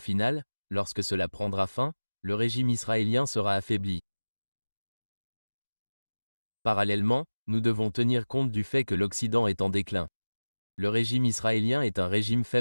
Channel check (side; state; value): both; inverted; correlation -1.00